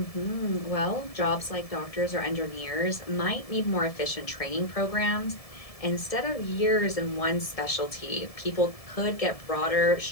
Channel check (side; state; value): right; late; 1.7 ms